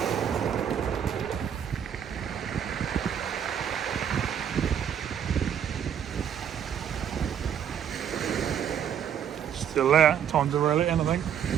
Still there, time to reel it in, I think.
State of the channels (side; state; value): left; quieter; 8.8 dB